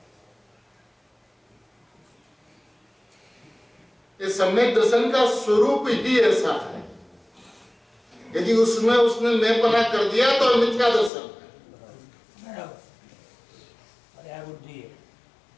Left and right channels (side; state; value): right; drops out; at 11.1 s